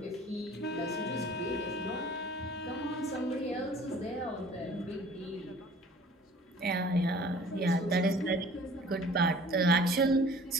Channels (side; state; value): both; normal; correlation 0.49